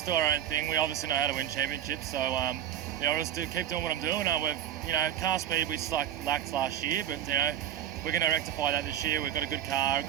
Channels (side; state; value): left; quieter; 10.9 dB